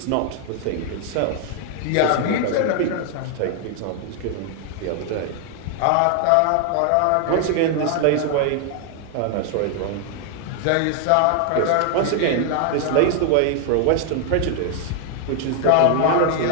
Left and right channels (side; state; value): both; different; correlation 0.00